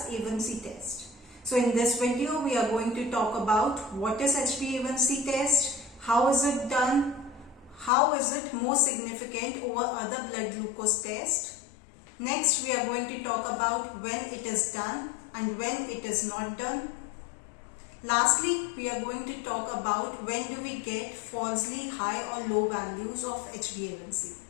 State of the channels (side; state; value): right; drops out; at 7.9 s